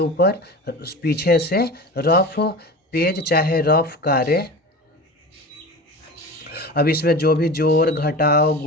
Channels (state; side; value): normal; both; correlation 0.32